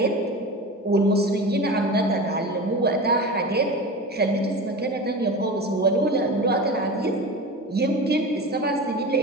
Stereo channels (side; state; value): both; normal; correlation 0.29